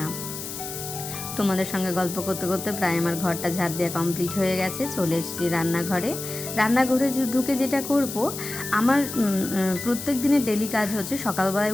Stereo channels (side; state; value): left; noise; hiss, 8 dB below the sound